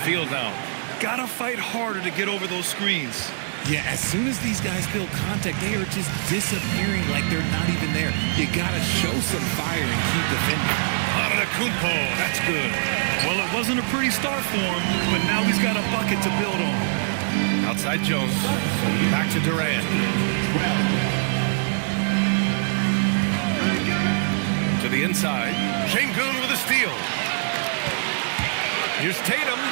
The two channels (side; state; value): left; silent; 62 dB below the other